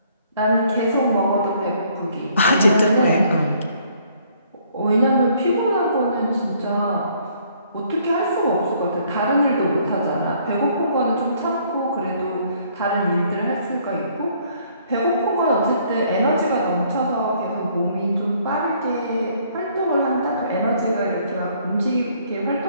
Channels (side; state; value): both; inverted; correlation -0.64